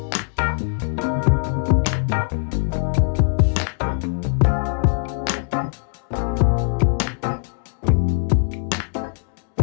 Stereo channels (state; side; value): silent; right; digital silence